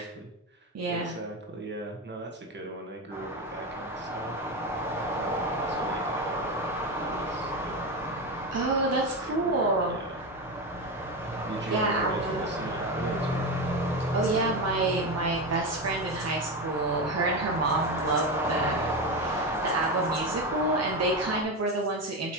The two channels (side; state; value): both; normal; correlation 0.16